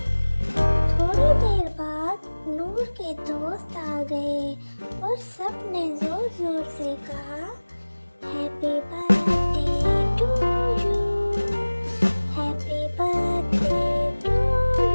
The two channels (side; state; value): both; inverted; correlation -1.00